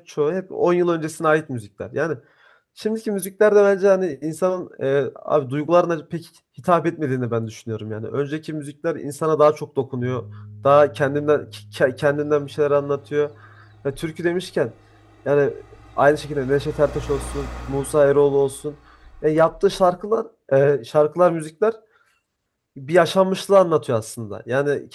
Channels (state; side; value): identical; both; correlation 1.00